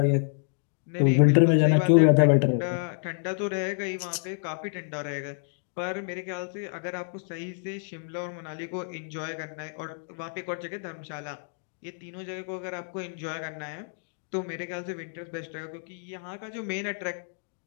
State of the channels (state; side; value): silent; right; digital silence